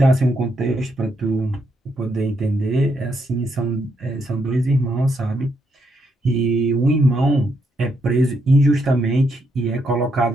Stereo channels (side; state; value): both; normal; correlation 0.78